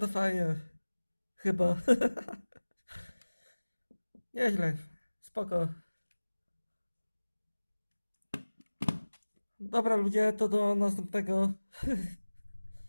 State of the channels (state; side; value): inverted; both; correlation -1.00